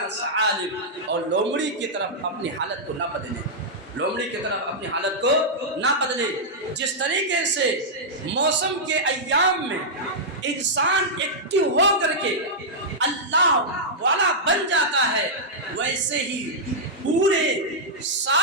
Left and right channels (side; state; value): both; normal; correlation -0.09